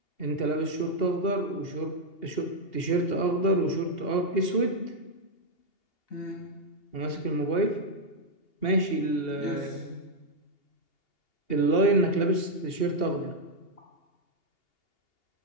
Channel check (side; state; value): right; late; 2.8 ms